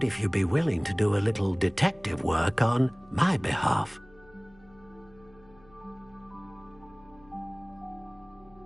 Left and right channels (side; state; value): left; noise; hum, 28 dB below the sound